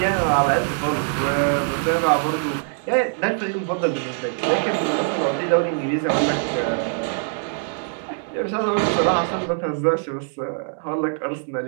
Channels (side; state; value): left; silent; digital silence